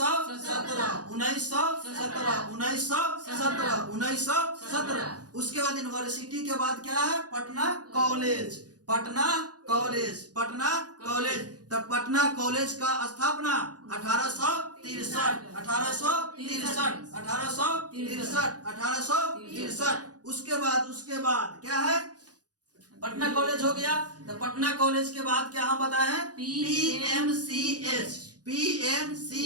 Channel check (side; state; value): left; late; 0.68 ms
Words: 1917। उसके बाद यूनिवर्सिटी के बाद क्या है? पटना कॉलेज। तब पटना कॉलेज का स्थापना 1863। उसके बाद क्या है? पटना कॉलेज हो गया। तो पटना कॉलेज के बाद क्या हम बताए हैं? PMCH।